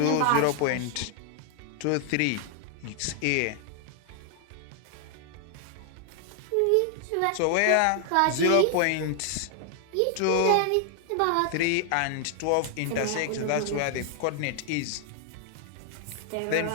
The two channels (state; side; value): different; both; correlation 0.00